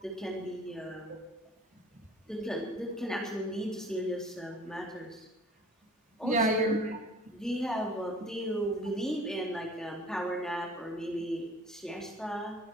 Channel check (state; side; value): normal; both; correlation 0.48